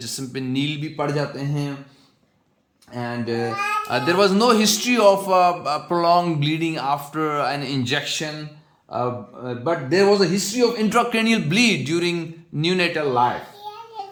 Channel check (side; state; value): both; identical; correlation 1.00